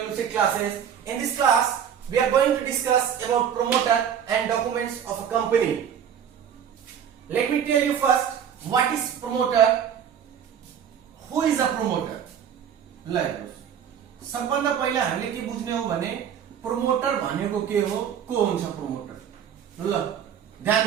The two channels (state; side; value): quieter; left; 8.6 dB